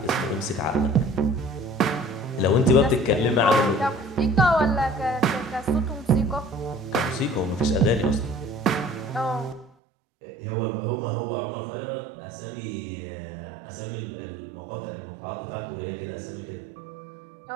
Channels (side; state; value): left; drops out; at 9.7 s